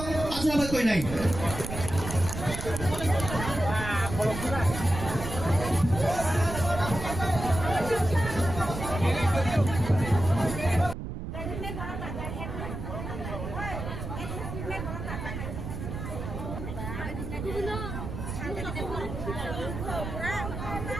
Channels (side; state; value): right; noise; rumble, 6 dB below the sound